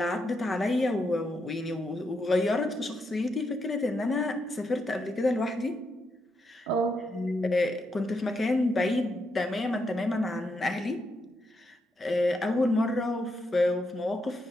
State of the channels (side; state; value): both; normal; correlation 0.81